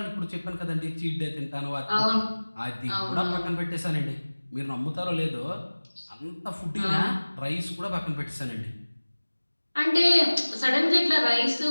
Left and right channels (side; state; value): both; inverted; correlation -1.00